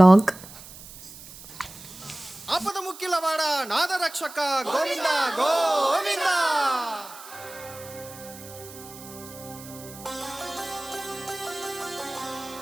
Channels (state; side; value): noise; right; hiss, 16 dB below the sound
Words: ఆపద ముక్కిలవాడ నాదరక్షక గోవింద గోవింద.